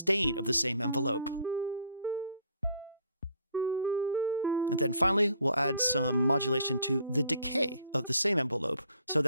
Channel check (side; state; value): both; inverted; correlation -0.60